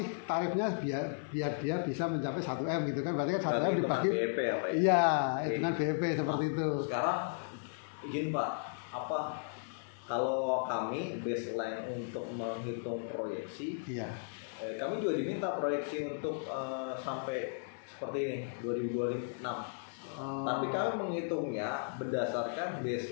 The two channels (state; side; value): silent; right; digital silence